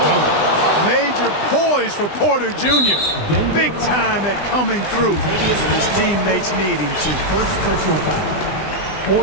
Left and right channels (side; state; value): right; late; 20 ms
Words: dunk. Major poise for Porter Jr. Big time at coming through when his teammates need him to. First personal foul.